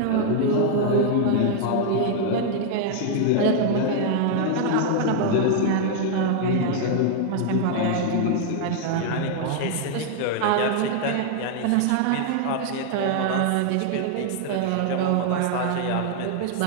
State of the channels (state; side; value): different; both; correlation 0.00